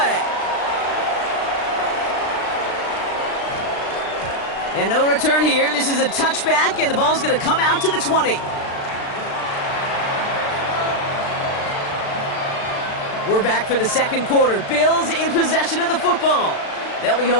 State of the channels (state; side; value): late; right; 36 ms